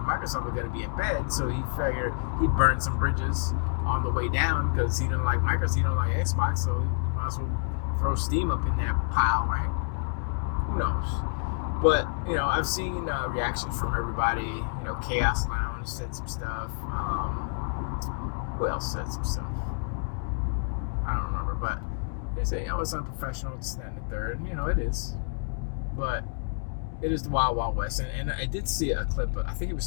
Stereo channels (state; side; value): silent; right; digital silence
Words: Microsoft are going to be in bed, so he figured he'd burn some bridges on the way down because he didn't like Microsoft, he don't like Xbox, so he might as well throw Steam up in that pile, right? Who knows? But, I've seen reactions from everybody. Chaos Lounge said some stuff. Who else said some stuff? I don't remember, but they say, it's unprofessional, it's that and the third. It is. But it is the Wild Wild West. And I did see a clip, but I think he